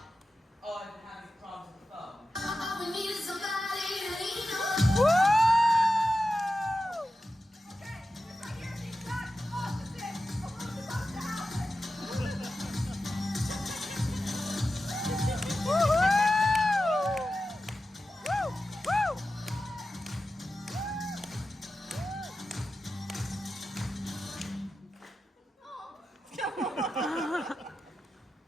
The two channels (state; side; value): normal; both; correlation 0.92